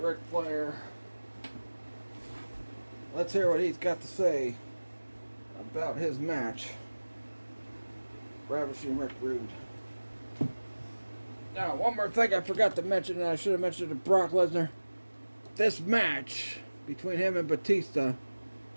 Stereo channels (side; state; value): both; inverted; correlation -1.00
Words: Flair. Let's hear what he's got to say about his match. Ravishing Rick Rude. Now, one more thing I forgot to mention, and I should have mentioned to Brock Lesnar. This match between him and Batista